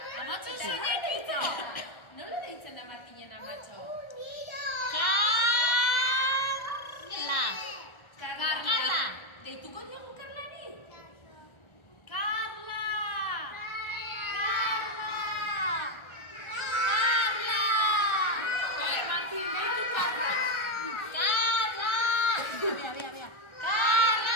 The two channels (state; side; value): late; right; 1.4 ms